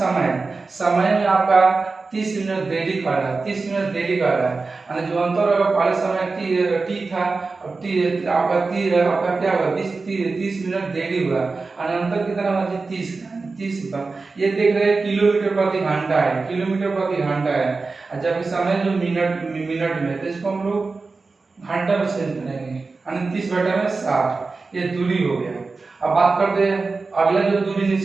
समय में आपका 30 मिनट देरी कर रहा है, 30 मिनट देरी कर रहा है, यानी जो अंतर होगा पहले समय t था, अब t आपका क्या होगा 30 मिनट देरी हुआ, यानी अंतर कितना होगा जी? 30 ये देख रहे हैं किलोमीटर प्रति घंटा है, किलोमीटर प्रति घंटा है, और जबकि समय जो मिनट में, तो इसको हम लोग घंटा में चेंज करेंगे, यानी 30/60 ये दूरी हो गया। अब बात करते हैं अगला जो दूरी,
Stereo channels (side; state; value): left; quieter; 4.0 dB